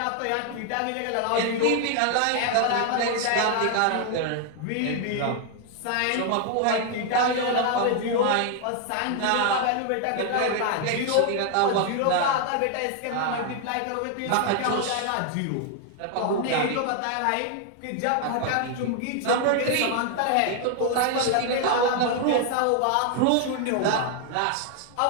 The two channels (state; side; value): different; both; correlation 0.00